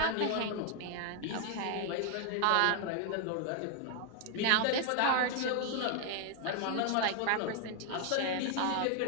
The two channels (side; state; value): both; different; correlation 0.00